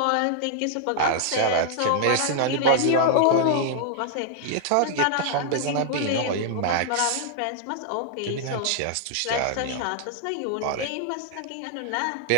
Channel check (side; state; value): both; different; correlation -0.01